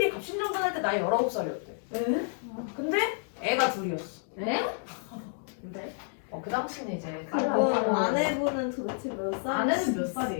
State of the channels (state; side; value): silent; right; digital silence